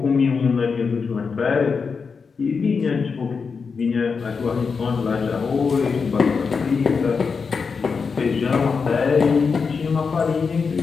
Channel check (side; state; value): right; quieter; 5.3 dB